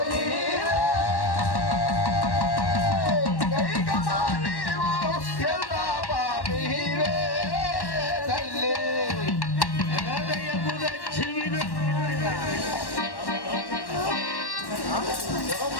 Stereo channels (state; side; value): late; right; 1.1 ms